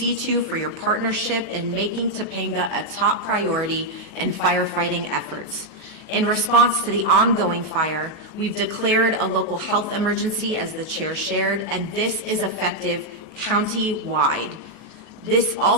for your partnership in making Topanga a top priority in firefighting efforts. In response to the ongoing fire, we've declared a local health emergency, as the chair shared, and this is effective county-wide. This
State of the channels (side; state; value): left; late; 19 ms